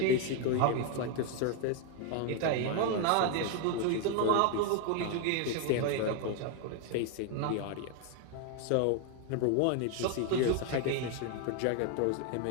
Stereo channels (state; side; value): different; both; correlation 0.01